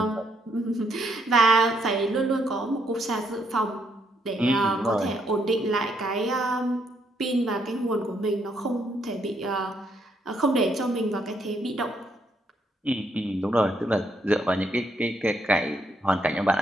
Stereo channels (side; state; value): both; normal; correlation 0.74